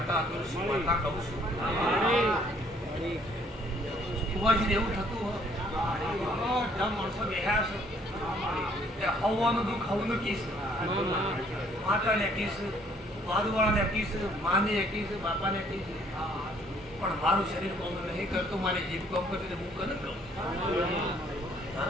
તુલસી માતા કહું છું. કુવાજી એવું થતું માણસો બેહ્યા છે હવાનું દુઃખ હવનું કીશ માતાને કીશ બાદવાળાને કીશ માને કીશ બાપાને કીશ પણ મારું શરીર કોમ નહીં કરતું મારી જીભ કોમ કરતી હું કને કહું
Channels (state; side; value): normal; both; correlation 0.62